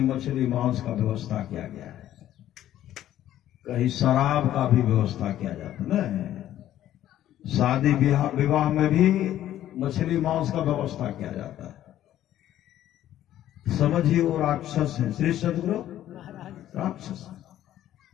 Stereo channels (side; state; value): right; quieter; 12.5 dB